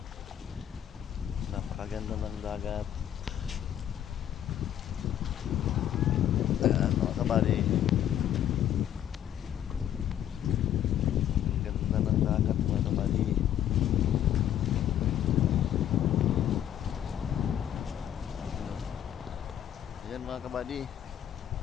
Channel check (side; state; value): right; quieter; 10.7 dB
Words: Napakaganda ng dagat. Ayan mga kabady. Ganda ng dagat mga kabady. Ayan mga kabady.